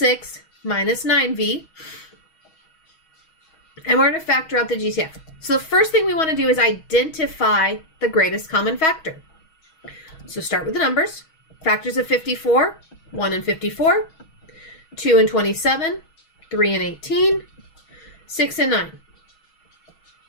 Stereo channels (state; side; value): late; right; 6.3 ms